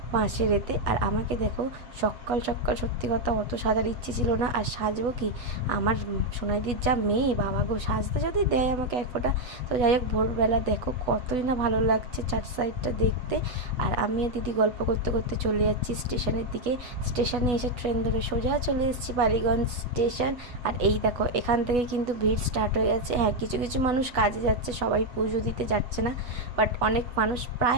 বাঁশের এতে। আর আমাকে দেখো সকাল সকাল, সত্যি কথা অত সাজার ইচ্ছে ছিল না, আর সাজবো কি, আমার সোনাইদির যা মেয়ে, বাবা গো, সাজতে যদি দেয় আমাকে এক ফোঁটা। তো যাই হোক, ভোরবেলা দেখো কতই না ভালো লাগছে চার সাইডটা দেখতে। আর আমি আর দিদি গল্প করতে করতে চলে যাচ্ছি স্টেশনের দিকে। স্টেশনে এসে ট্রেন ধরে সোজা চলে এসেছি বালিগঞ্জ স্টেশন। আর এই দেখো এখান থেকে কিন্তু ভিড় স্টার্ট হয়ে যাচ্ছে। হ্যাঁ, কিছু কিছু মানুষ কাজে যাচ্ছে, সবাই পুজো দিতে যাচ্ছে না, বাট অনেক মানুষ,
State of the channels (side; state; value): left; late; 8.2 ms